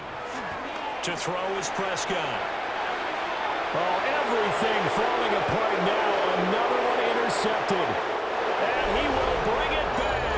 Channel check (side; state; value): both; identical; correlation 1.00